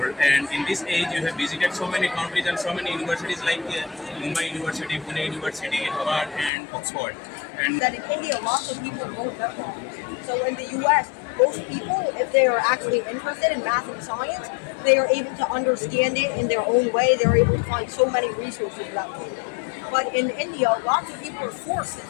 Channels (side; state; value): right; drops out; at 6.5 s